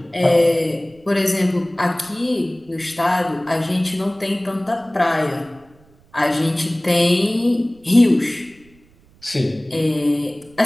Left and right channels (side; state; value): right; noise; rumble, 29 dB below the sound